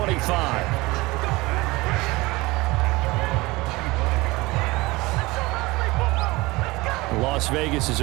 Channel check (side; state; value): left; quieter; 21.9 dB